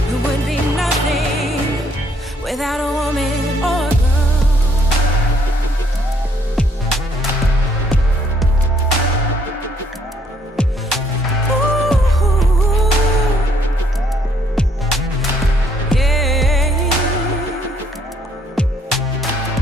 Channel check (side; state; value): both; normal; correlation 0.67